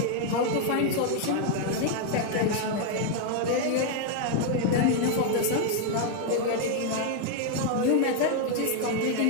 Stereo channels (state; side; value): different; both; correlation 0.00